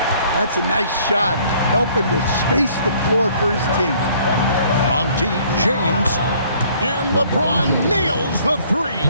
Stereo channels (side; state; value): both; inverted; correlation -0.59